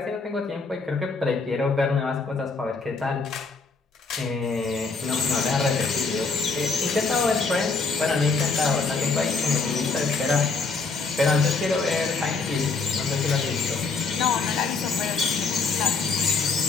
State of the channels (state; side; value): quieter; right; 4.4 dB